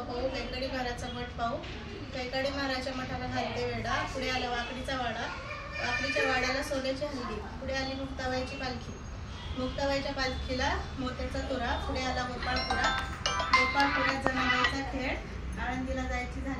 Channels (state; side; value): identical; both; correlation 1.00